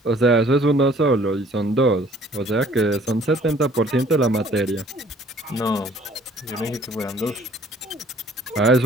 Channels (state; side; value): normal; both; correlation 0.56